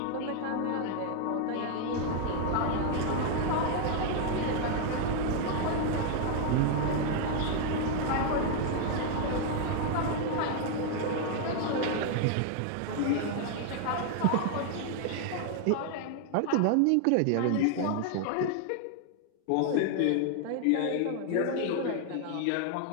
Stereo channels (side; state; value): both; different; correlation 0.00